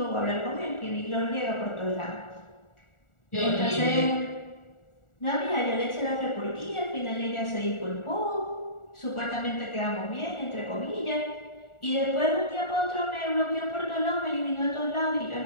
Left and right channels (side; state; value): right; late; 1.4 ms